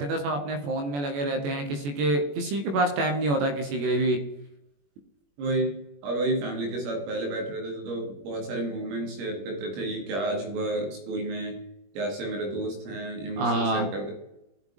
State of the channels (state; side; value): late; left; 21 ms